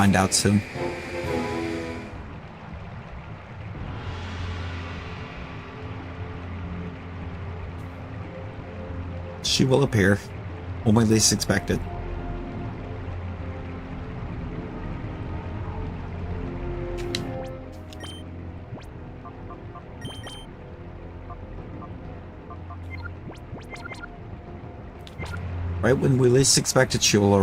out soon. She will appear when we least expect it. Right when we least expect it, she will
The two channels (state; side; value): identical; both; correlation 1.00